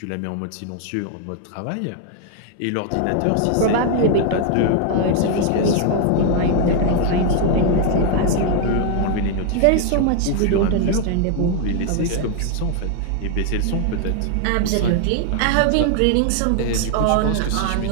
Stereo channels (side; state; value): both; different; correlation 0.00